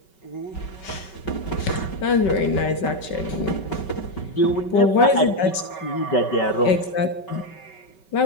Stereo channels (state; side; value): late; right; 5.3 ms